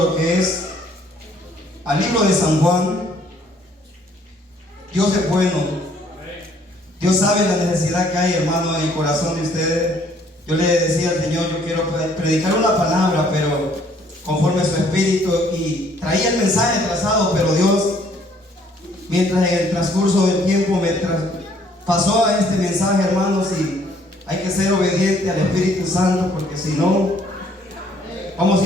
que es al libro de San Juan. Dios es bueno. Dios sabe la necesidad que hay, hermano, en el corazón de ustedes. Yo le decía al Señor, yo quiero predicar una palabra, pero conforme a su espíritu, y traía el mensaje trazado, pero Dios, mientras en el transcurso del tiempo me pasó a este mensaje, hermanos, y hay que ser obediente al Espíritu Santo, porque si no, vamos a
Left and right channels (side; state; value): both; normal; correlation 0.62